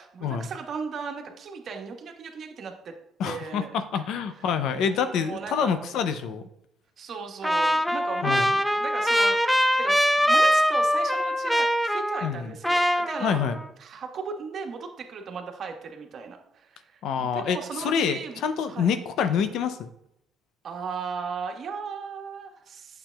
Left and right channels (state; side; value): normal; both; correlation 0.81